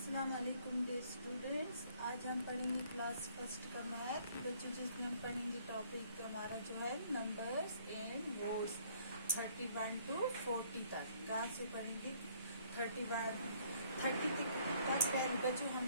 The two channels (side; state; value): both; inverted; correlation -0.62